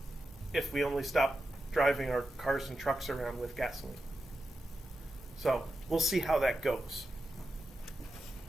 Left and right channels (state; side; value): normal; both; correlation 0.89